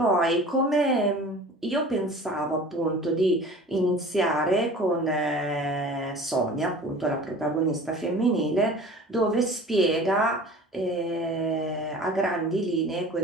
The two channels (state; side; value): normal; both; correlation 0.42